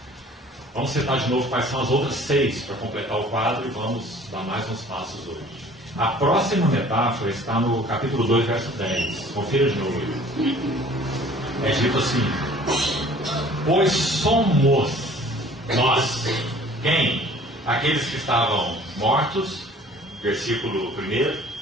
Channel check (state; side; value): normal; both; correlation 0.51